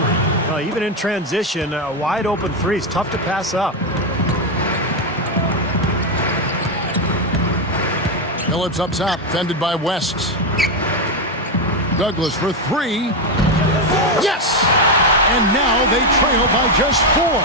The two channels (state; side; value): normal; both; correlation 0.07